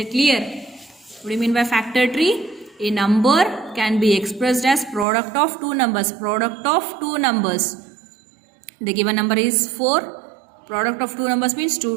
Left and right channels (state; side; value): drops out; left; at 5.1 s